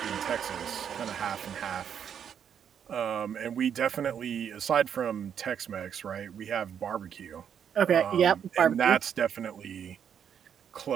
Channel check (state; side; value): quieter; left; 8.3 dB